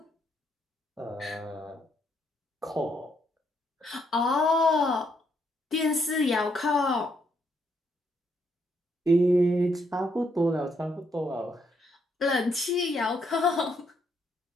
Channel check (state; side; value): normal; both; correlation 0.75